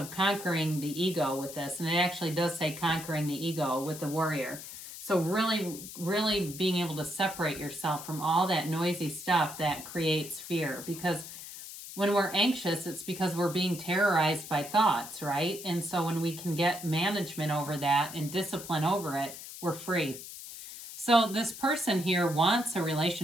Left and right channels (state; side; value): noise; left; hiss, 12 dB below the sound